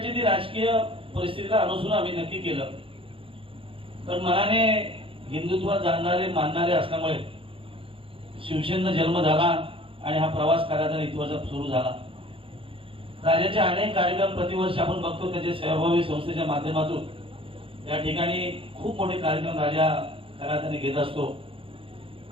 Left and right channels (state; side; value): late; left; 0.26 ms